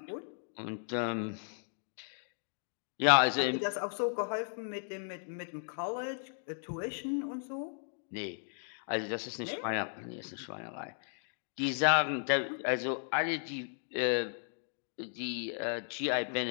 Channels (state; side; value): silent; right; digital silence